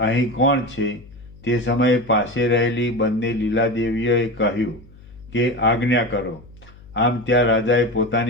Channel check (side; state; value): left; noise; hum, 22 dB below the sound